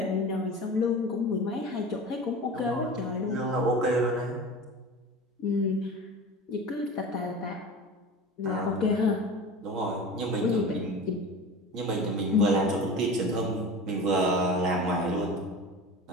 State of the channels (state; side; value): normal; both; correlation 0.34